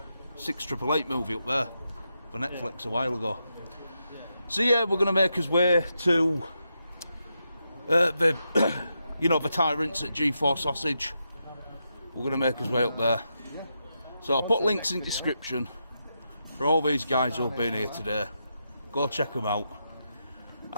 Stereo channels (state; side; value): inverted; both; correlation -0.85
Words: 6888 movie up there. for Netflix a while ago. So yeah, we're going to make his way to the the Tyrants at G4 Sausage. We're going to make his way up there. So I'll put links in the description for all these guys who have been here today. Go check them out.